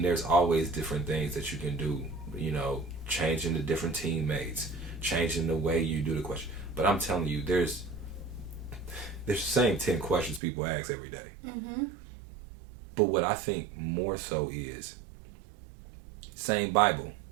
there's always different things that you can do, you know, changing the different teammates, changing the way you do the question. But I'm telling you, there's the same 10 questions people ask every day. Mm-hmm. But what I think more so is, same Bible,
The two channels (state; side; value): drops out; left; at 10.4 s